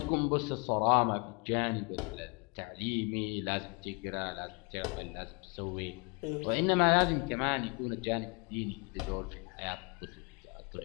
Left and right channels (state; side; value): quieter; right; 32.2 dB